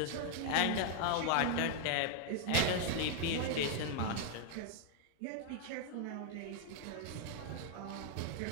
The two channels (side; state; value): both; different; correlation 0.00